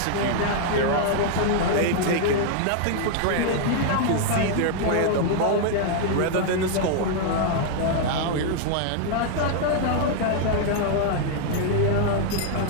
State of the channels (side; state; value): both; different; correlation -0.01